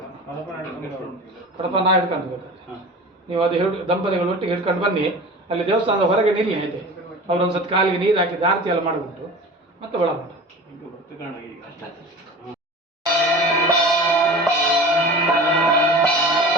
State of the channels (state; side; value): normal; both; correlation 0.36